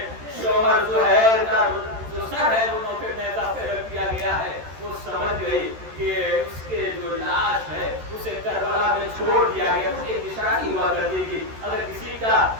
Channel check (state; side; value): late; left; 13 ms